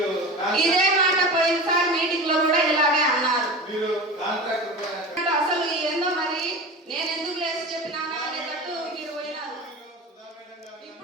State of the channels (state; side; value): normal; both; correlation 0.30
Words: ఇదే మాట పోయినసారి మీటింగ్ లో కూడా ఇలాగే అన్నారు. అసలు ఏందో మరి నేను ఎందుకు లేసి చెప్పినానా అనేటట్టు మీరు పోయినారు.